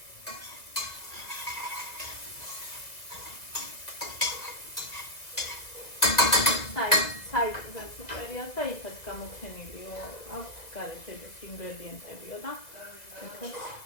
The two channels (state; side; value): late; right; 2.0 ms